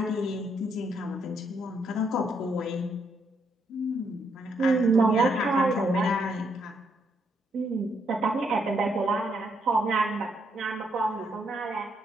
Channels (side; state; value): both; normal; correlation 0.75